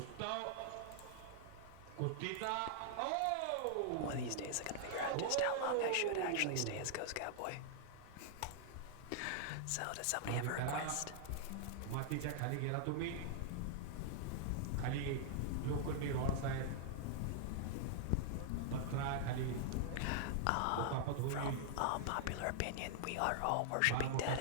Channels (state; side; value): different; both; correlation -0.01